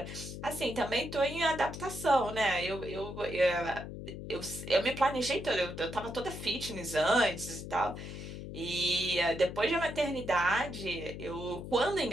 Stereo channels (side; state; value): left; noise; hum, 9 dB below the sound